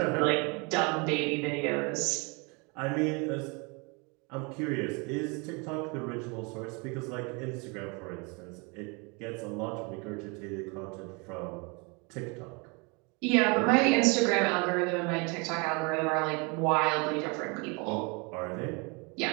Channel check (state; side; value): quieter; left; 30.7 dB